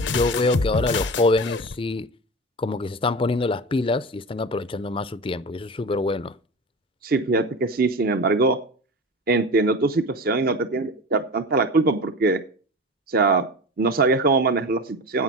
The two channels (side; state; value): both; normal; correlation 0.29